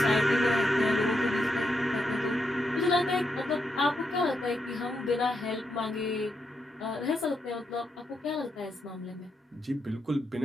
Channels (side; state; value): both; normal; correlation 0.82